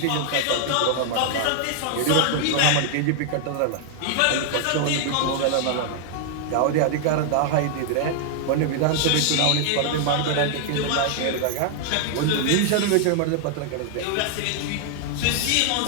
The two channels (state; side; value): different; both; correlation 0.00